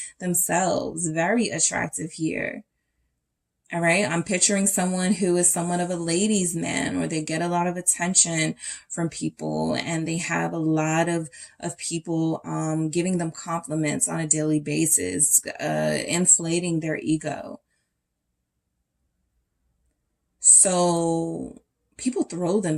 themselves, very attractive here. All right. I'm picturing someone who is somewhat of a ladies' man, or they get a lot of attention from people, and they have a lot of people giving them compliments on a daily basis, inflating their ego. So people throw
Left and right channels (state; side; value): identical; both; correlation 1.00